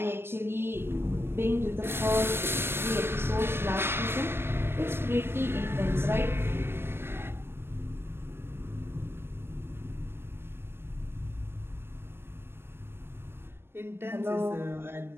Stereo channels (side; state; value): left; late; 0.11 ms